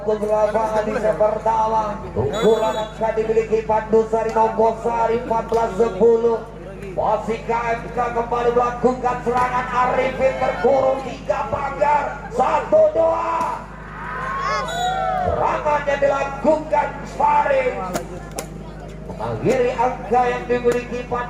lapangan di set pertama. Unggulan angka dimiliki Pandusari Nogosari 14-10. Masih KMK kembali melakukan serangan. Arifin terkurung 3 pagar 1-2. Serangannya dilakukan Faris mengakhiri angka yang dimiliki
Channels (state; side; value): identical; both; correlation 1.00